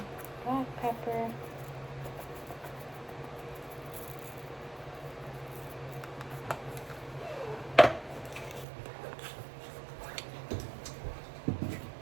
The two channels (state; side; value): drops out; left; at 8.7 s